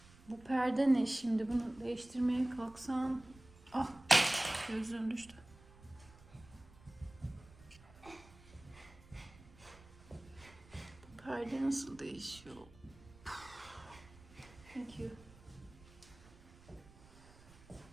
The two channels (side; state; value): right; noise; rumble, 22 dB below the sound